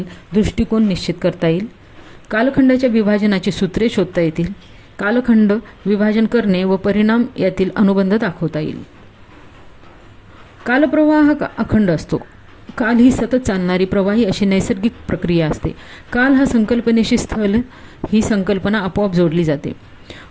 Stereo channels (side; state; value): both; identical; correlation 1.00